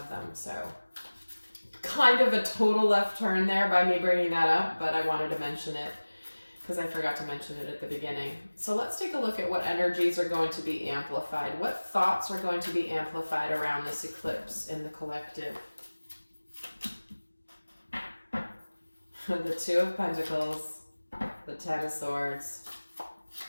them. So kind of a total left turn there by me bringing that up, but I wanted to mention it because I forgot to mention it at the beginning. So let's take a look at what energies are going to be amplified. What thoughts are going to be amplified around this eclipse in the collective? The Two of Pentacles, the Ten of Swords,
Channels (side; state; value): both; inverted; correlation -1.00